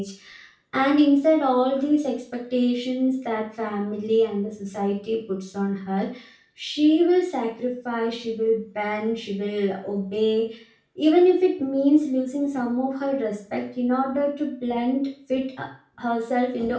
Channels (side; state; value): both; identical; correlation 1.00